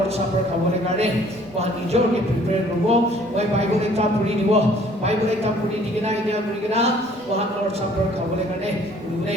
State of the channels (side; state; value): both; normal; correlation 0.57